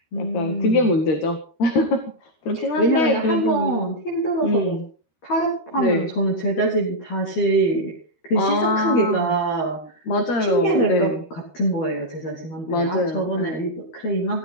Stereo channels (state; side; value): late; right; 13 ms